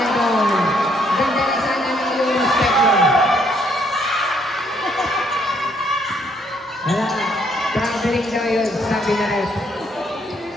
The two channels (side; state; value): both; normal; correlation 0.69